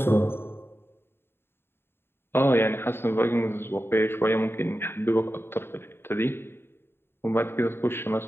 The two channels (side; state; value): right; late; 0.11 ms